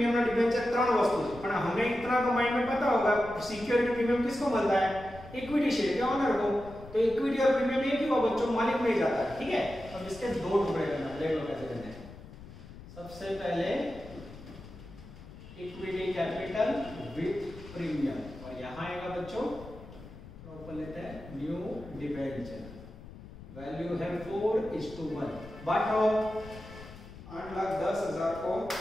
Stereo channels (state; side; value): noise; left; rumble, 16 dB below the sound